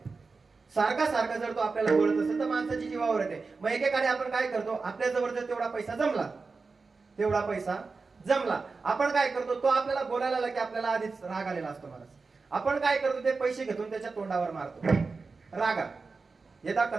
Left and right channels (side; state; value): left; quieter; 4.3 dB